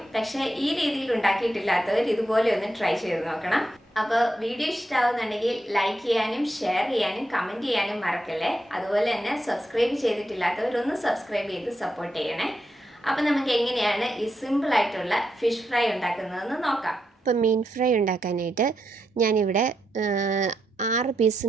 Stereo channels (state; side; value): normal; both; correlation 0.83